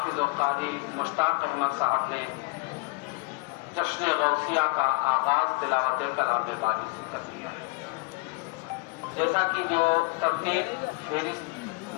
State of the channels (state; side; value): quieter; right; 27.4 dB